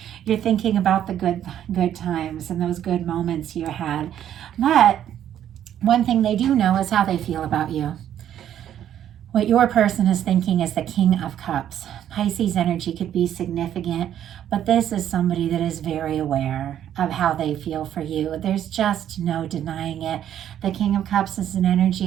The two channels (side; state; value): left; quieter; 10.6 dB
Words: you're thinking about the good times and those good moments you had. But one thing they do know is how they feel about you. What your person is thinking is the King of Cups. Pisces energy could be significant, but this is somebody that is very aware of how they feel for you. There's just no denying it. The King of Cups is an